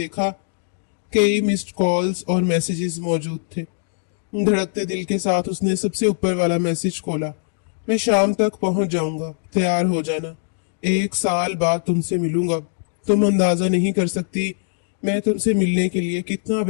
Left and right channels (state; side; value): silent; right; digital silence